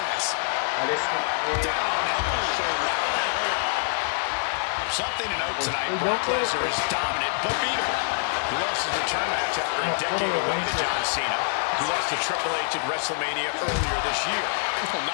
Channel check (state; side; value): silent; right; digital silence